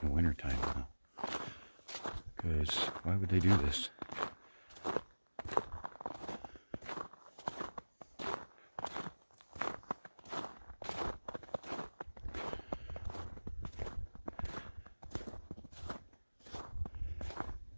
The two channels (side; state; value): both; inverted; correlation -1.00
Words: in the wintertime now. Because why would they do this?